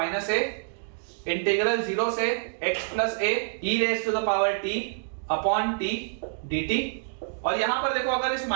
a इंटीग्रल 0 से x plus a e raise to the power t upon t dt. और यहां पर देखो अगर इस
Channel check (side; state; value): left; silent; digital silence